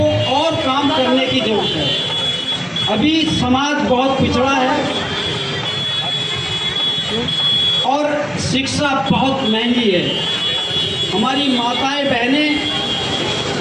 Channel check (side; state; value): both; identical; correlation 1.00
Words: और काम करने की जरूरत है। अभी समाज बहुत पिछड़ा है और शिक्षा बहुत महंगी है। हमारी माताएं, बहनें,